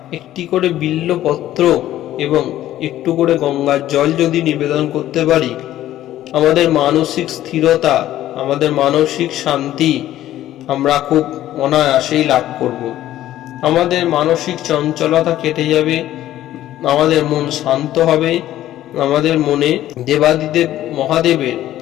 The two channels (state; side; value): quieter; right; 13.4 dB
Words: একটি করে বিল্লপত্র এবং একটু করে গঙ্গার জল যদি নিবেদন করতে পারি, আমাদের মানসিক স্থিরতা, আমাদের মানসিক শান্তি আমরা খুব অনায়াসেই লাভ করব। আমাদের মানসিক চঞ্চলতা কেটে যাবে, আমাদের মন শান্ত হবে, আমাদের মনে দেবাদিদেব মহাদেবের